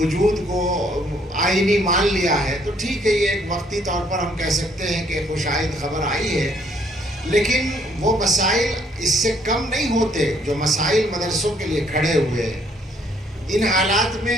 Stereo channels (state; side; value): normal; both; correlation 0.66